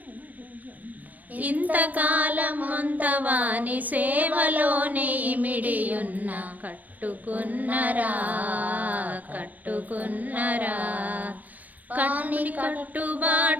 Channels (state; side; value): late; left; 0.080 ms